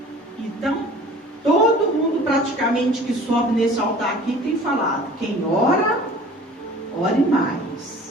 Então, todo mundo praticamente que sobe nesse altar aqui tem falado, quem ora, ore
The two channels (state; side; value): normal; both; correlation 0.46